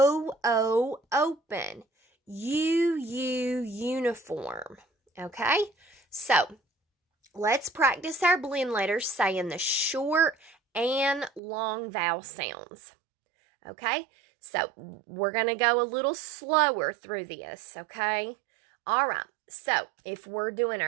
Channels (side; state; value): left; drops out; at 11.4 s